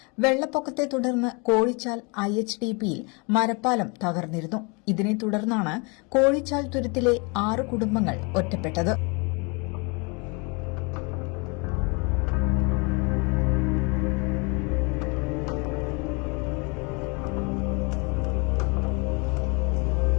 വെള്ളപ്പൊക്കത്തെ തുടർന്ന് കോഴിച്ചാൽ IHDPയിൽ മരപ്പാലം തകർന്നിരുന്നു. ഇതിനെ തുടർന്നാണ് കോഴിച്ചാൽ തുരുത്തിലെ 6 കുടുംബങ്ങൾ ഒറ്റപ്പെട്ടത്.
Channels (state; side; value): quieter; right; 30.9 dB